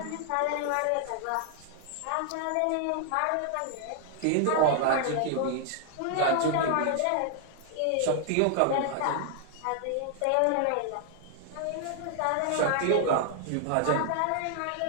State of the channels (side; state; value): both; different; correlation 0.00